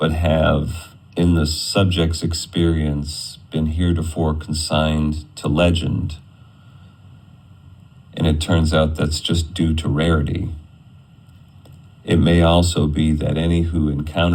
have, in the subject's experience, been heretofore consigned to legend. And it turns out that's just due to rarity. It may also be that any who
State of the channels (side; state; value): both; identical; correlation 1.00